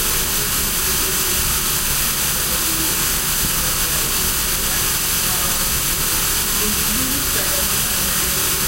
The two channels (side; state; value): both; identical; correlation 1.00